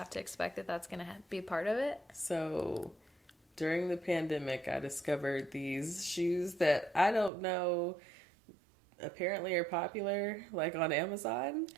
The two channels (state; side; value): drops out; left; at 7.3 s